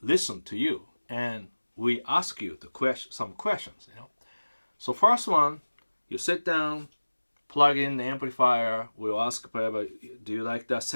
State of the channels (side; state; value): both; inverted; correlation -1.00